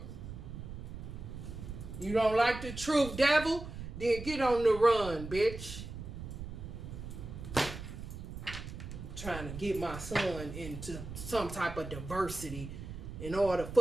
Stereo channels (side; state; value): right; noise; rumble, 9 dB below the sound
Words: You don't like the truth, devil? Then get on the run, bitch. trying to get my son into some type of diversity, and all the